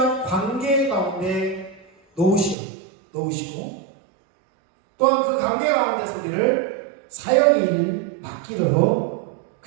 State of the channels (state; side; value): drops out; left; at 2.6 s